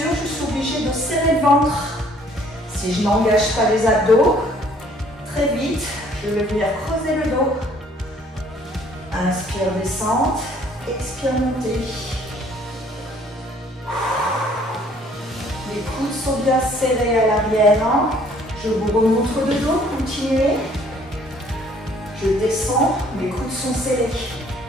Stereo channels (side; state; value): both; normal; correlation 0.59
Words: je suis obligée de serrer le ventre. Si je n'engage pas les abdos, très vite, je vais venir creuser le dos. Inspire, descente, expire, montée. Les coudes sont bien serrés à l'arrière. Je vous remontre le dos, continuez. Je descends, mes coudes sont serrés.